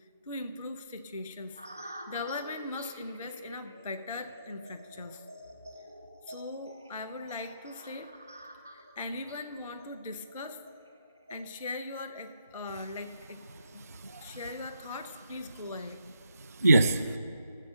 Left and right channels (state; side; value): inverted; both; correlation -0.78